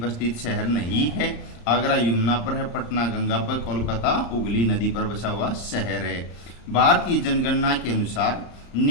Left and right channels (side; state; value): right; late; 34 ms